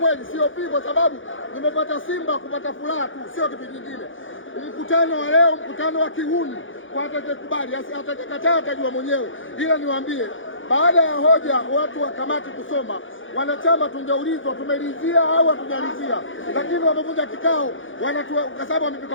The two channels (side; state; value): right; late; 0.57 ms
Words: sio pii, kwa sababu nimepata Simba kupata furaha tu, sio kitu kingine. Mkutano wa leo, mkutano wa kihuni, kwa atakayekubali, atakayekataa atajua mwenyewe. Ila niwaambie, baada ya hoja watu wa kamati kusoma, wanachama tungeulizwa tumeridhia au hatujalizia, lakini wamevunja kikao, kwa sababu wamepika